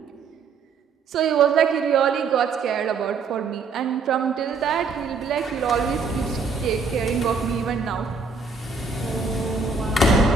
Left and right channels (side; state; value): left; quieter; 4.8 dB